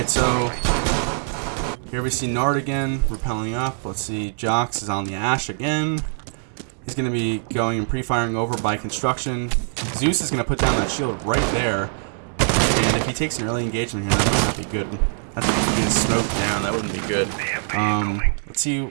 so here we see Nard again, repelling up. Let's see, Jox is on the Ash again. He's going to be going and pre-firing over by construction. Zeus is going to put down that shield right there. And if he takes an early engagement here, that might not be good. That's if he gets smoked down, that wouldn't be good. Let's see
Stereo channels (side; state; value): left; silent; digital silence